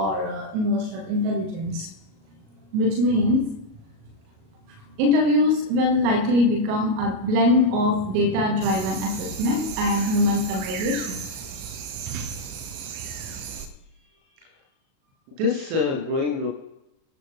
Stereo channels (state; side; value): late; left; 37 ms